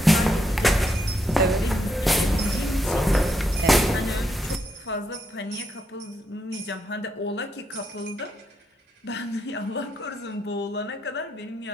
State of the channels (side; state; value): both; normal; correlation 0.80